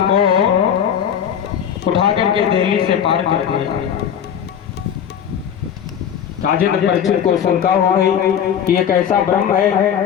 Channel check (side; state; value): right; quieter; 8.7 dB